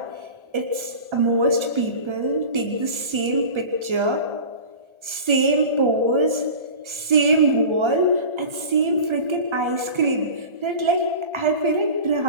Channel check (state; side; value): late; left; 1.3 ms